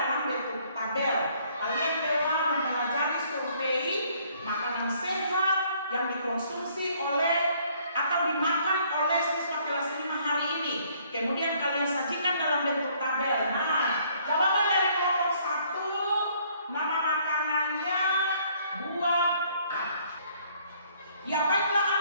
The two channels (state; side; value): inverted; both; correlation -0.63